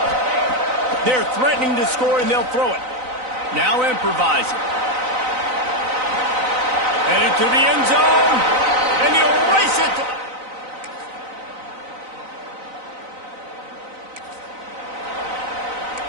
They're threatening to score, and they'll throw it. Now improvising. Headed to the end zone, and he'll race it.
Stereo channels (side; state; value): left; late; 3.9 ms